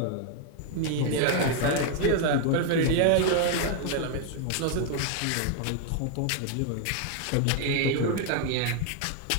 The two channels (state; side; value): different; both; correlation 0.00